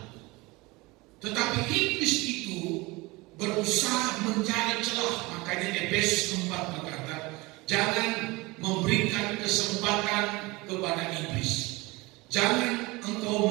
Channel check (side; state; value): left; quieter; 23.1 dB